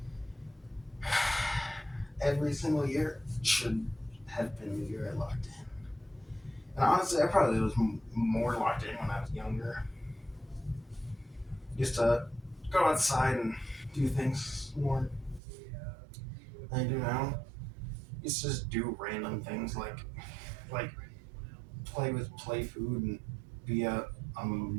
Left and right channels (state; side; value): drops out; left; at 15.4 s